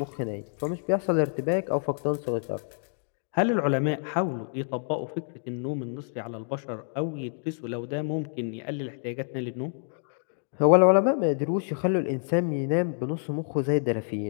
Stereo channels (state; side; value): silent; right; digital silence